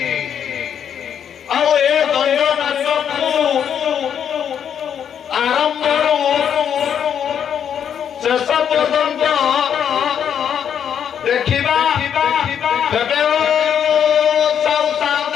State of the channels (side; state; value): right; quieter; 8.5 dB